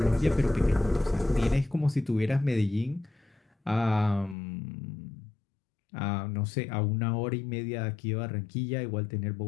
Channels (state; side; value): drops out; right; at 4.4 s